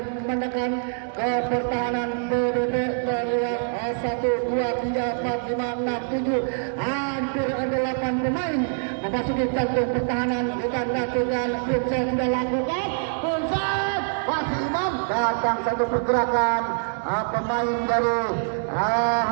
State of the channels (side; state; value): left; silent; digital silence